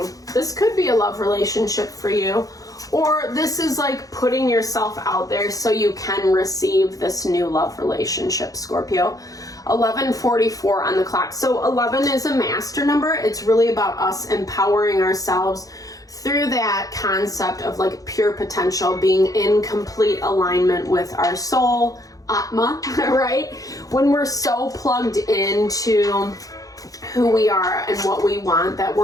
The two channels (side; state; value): right; late; 0.17 ms